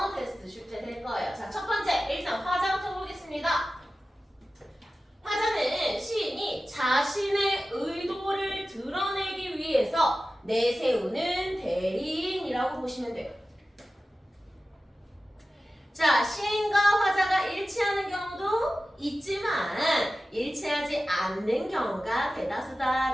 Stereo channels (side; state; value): both; normal; correlation 0.95